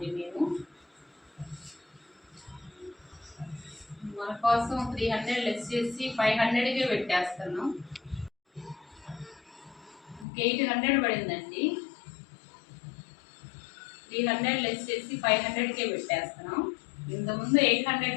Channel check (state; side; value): drops out; right; at 10.2 s